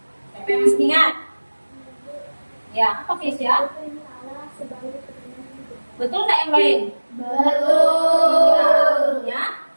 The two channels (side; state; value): both; inverted; correlation -1.00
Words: Siapa yang masih ingat? Ya, apa Kesia? Betul nggak yang lain? Betul. Ya.